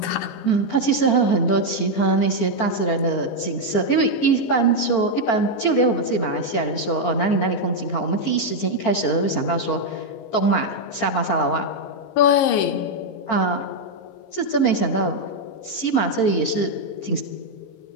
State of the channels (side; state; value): right; late; 15 ms